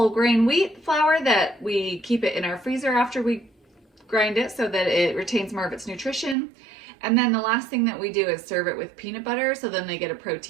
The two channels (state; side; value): drops out; left; at 6.4 s